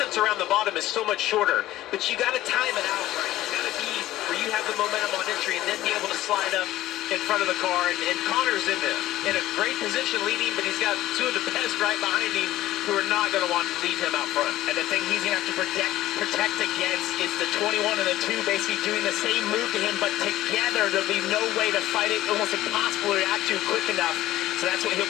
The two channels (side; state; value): right; quieter; 15.1 dB